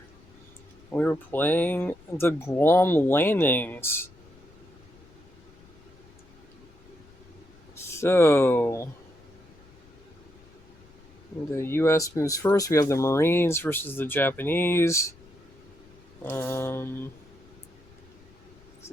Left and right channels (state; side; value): noise; left; rumble, 26 dB below the sound